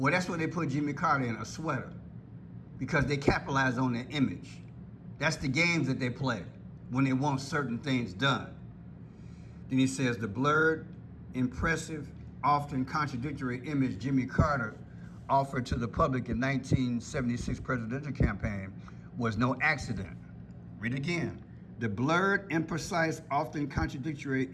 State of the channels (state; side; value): identical; both; correlation 1.00